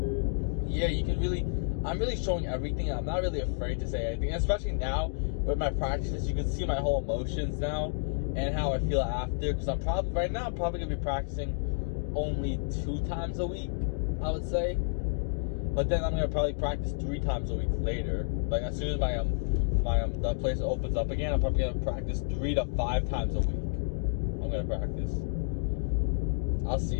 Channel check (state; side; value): silent; right; digital silence